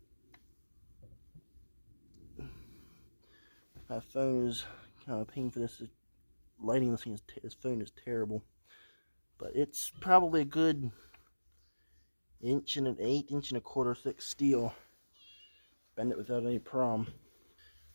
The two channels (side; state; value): both; inverted; correlation -1.00